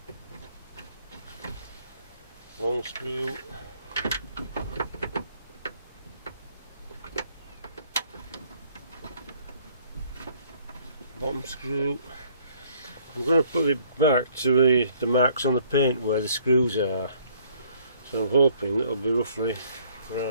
Long screw. Bottom screw. I'm going to put it back to the marks on the paint where the screws are. So I'm hoping that'll be roughly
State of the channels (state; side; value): inverted; both; correlation -0.61